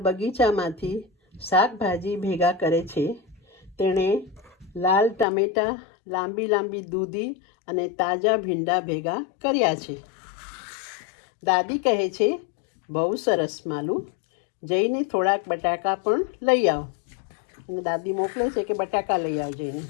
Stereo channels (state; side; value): drops out; right; at 5.2 s